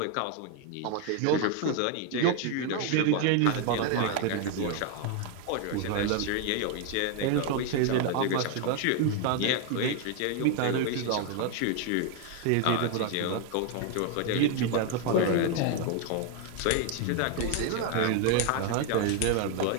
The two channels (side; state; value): both; different; correlation 0.00